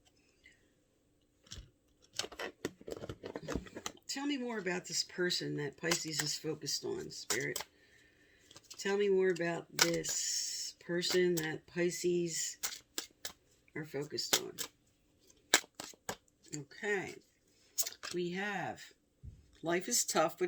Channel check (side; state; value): both; identical; correlation 1.00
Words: Tell me more about this person that Pisces is focused on, Spirit. Tell me more about this person that Pisces are focused on. Okay. We have, life is tough,